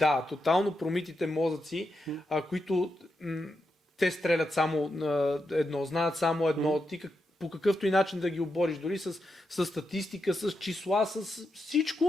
тотално промитите мозъци, които те стрелят само едно, знаят само едно, ти по какъвто и начин да ги обориш, дори с статистика, с числа, с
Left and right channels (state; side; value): normal; both; correlation 0.85